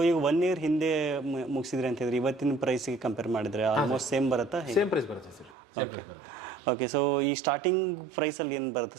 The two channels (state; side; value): drops out; left; at 5.6 s